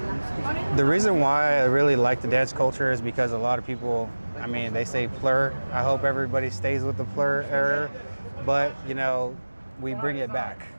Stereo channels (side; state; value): both; inverted; correlation -1.00